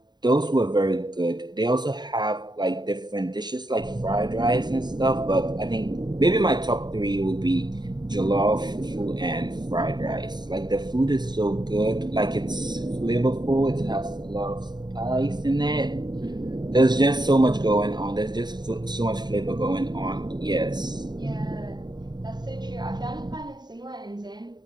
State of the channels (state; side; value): late; left; 0.21 ms